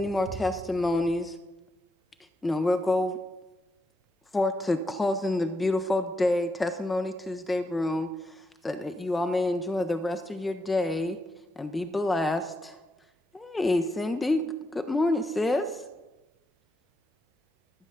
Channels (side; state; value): both; normal; correlation 0.83